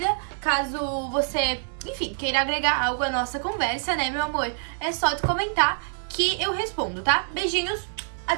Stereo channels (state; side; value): silent; left; 61 dB below the other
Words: caso você, enfim, queira agregar algo à nossa conversa, né, meu amor? É só tu comentar que eu respondo, tá? Beijinhos,